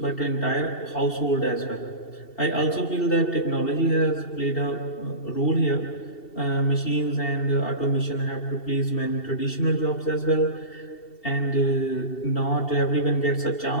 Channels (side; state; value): right; late; 2.7 ms